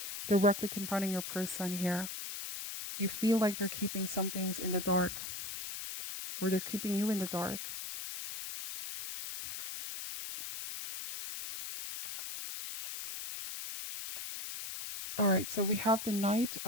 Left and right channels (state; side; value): noise; left; hiss, 6 dB below the sound